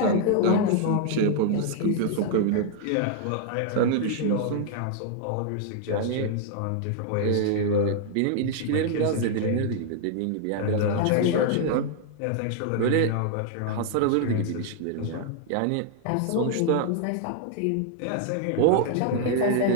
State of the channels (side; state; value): both; different; correlation 0.00